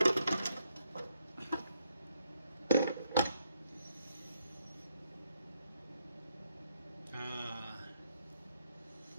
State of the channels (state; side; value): inverted; both; correlation -0.75